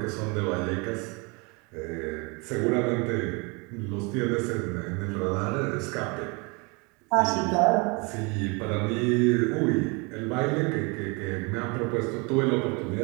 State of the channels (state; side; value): quieter; left; 29.9 dB